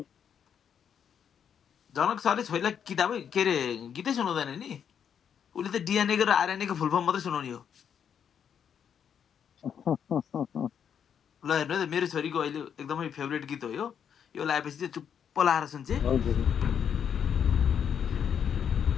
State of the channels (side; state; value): right; quieter; 8.1 dB